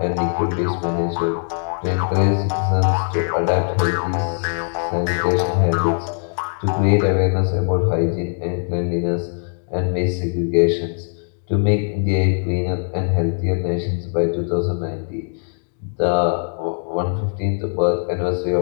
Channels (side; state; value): right; silent; digital silence